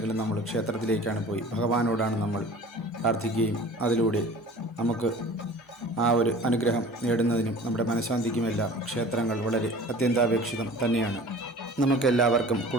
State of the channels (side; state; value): both; normal; correlation 0.43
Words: നമ്മൾ ക്ഷേത്രത്തിലേക്കാണ് പോയി ഭഗവാനോടാണ് നമ്മൾ പ്രാർത്ഥിക്കുകയും അതിലൂടെ നമുക്ക് ആ ഒരു അനുഗ്രഹം നേടുന്നതിനും നമ്മുടെ മനഃശാന്തിക്കുമെല്ലാം ക്ഷേത്രങ്ങൾ വളരെ അത്യന്താപേക്ഷിതം തന്നെയാണ്. നമുക്കെല്ലാവർക്കും